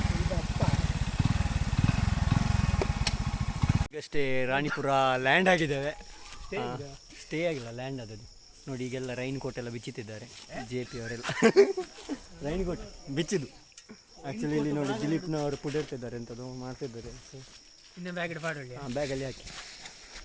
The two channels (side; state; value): both; identical; correlation 1.00